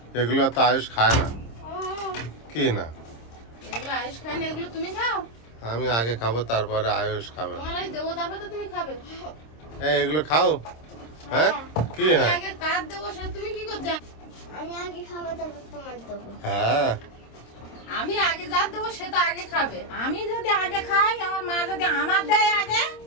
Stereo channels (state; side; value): late; right; 26 ms